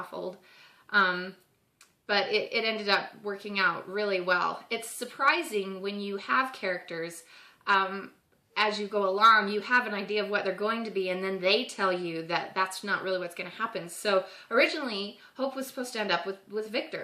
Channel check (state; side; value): identical; both; correlation 1.00